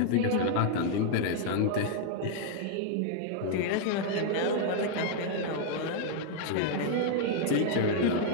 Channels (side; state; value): both; different; correlation 0.00